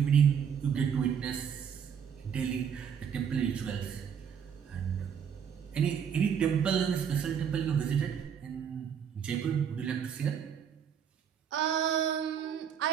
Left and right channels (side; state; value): left; quieter; 7.8 dB